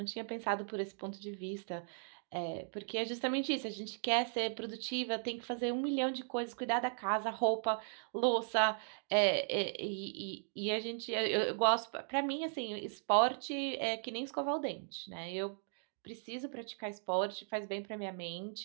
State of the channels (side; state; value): left; silent; digital silence